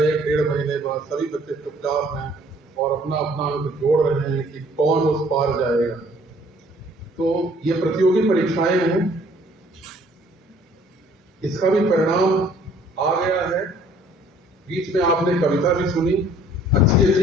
महीने बाद। सभी बच्चे चुपचाप हैं और अपना अपना अंक जोड़ रहे हैं कि कौन उस पार जाएगा। तो ये प्रतियोगी परीक्षाएं हैं, इसका भी परिणाम आ गया है। बीच में आपने कविता भी सुनी, अच्छी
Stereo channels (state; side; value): normal; both; correlation 0.58